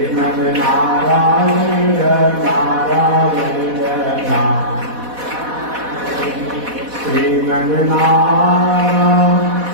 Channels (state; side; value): late; left; 4.1 ms